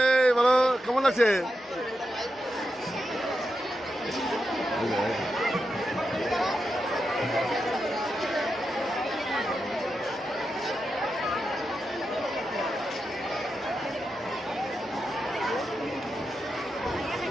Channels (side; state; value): both; normal; correlation 0.87